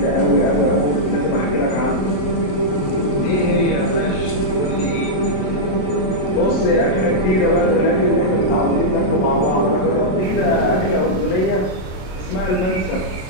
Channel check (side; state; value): right; late; 27 ms